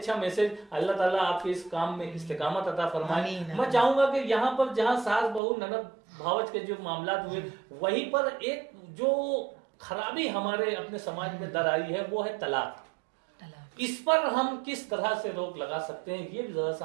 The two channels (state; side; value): drops out; left; at 5.4 s